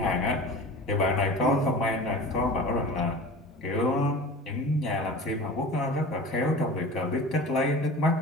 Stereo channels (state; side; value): normal; both; correlation 0.37